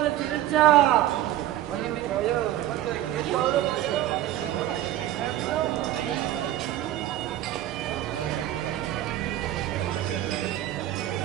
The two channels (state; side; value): quieter; left; 13.5 dB